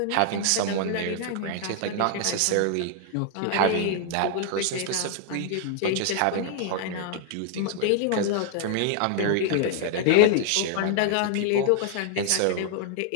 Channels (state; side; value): different; both; correlation 0.00